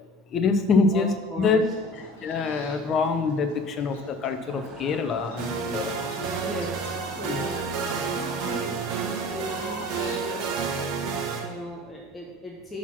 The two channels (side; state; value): both; normal; correlation 0.44